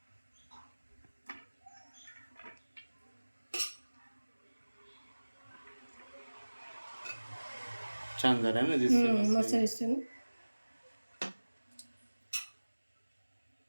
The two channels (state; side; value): inverted; both; correlation -1.00